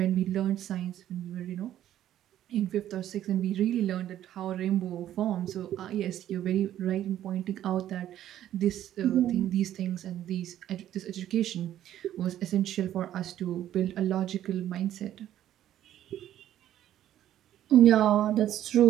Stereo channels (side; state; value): left; quieter; 12.0 dB